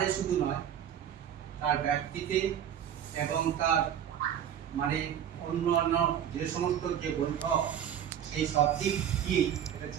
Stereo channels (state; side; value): quieter; left; 9.6 dB